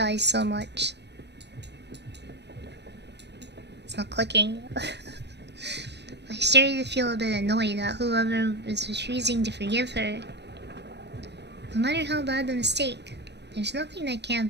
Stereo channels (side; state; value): left; late; 0.50 ms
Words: so much. It's not clicking. I started to feel a bit annoyed at whoever was refusing to forgive her. No matter how bad the mistake, there's nothing that can't